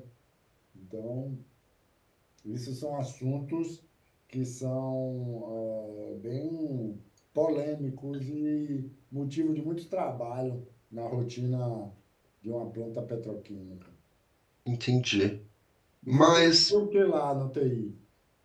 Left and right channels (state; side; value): identical; both; correlation 1.00